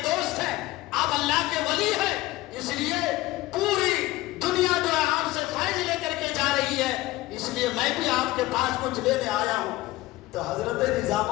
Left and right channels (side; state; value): right; quieter; 18.0 dB